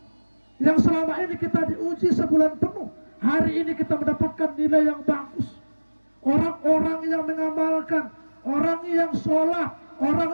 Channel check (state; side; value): inverted; both; correlation -1.00